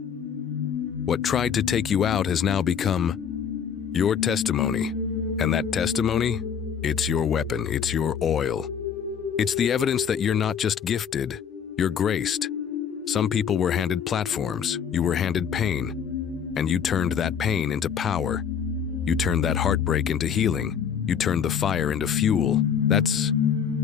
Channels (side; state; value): right; quieter; 7.6 dB